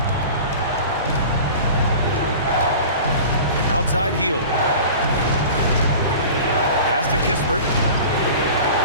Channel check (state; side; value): inverted; both; correlation -0.39